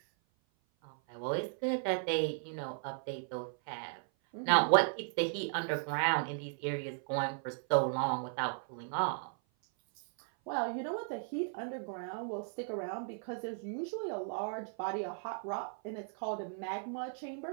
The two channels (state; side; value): silent; left; 54 dB below the other